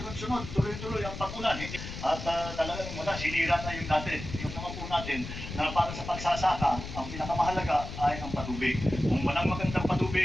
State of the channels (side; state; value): left; noise; rumble, 9 dB below the sound